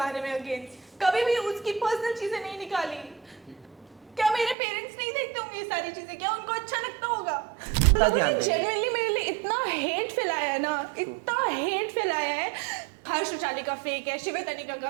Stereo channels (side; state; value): left; drops out; at 4.5 s